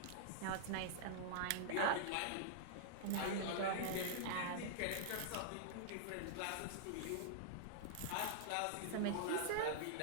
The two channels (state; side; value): different; both; correlation -0.01